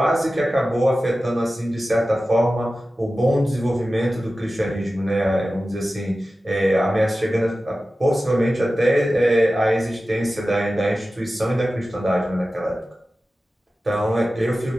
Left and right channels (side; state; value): both; normal; correlation 0.95